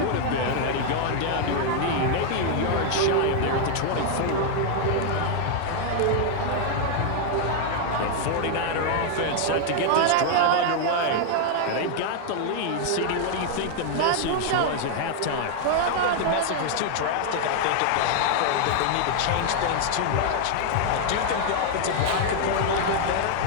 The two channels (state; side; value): different; both; correlation 0.00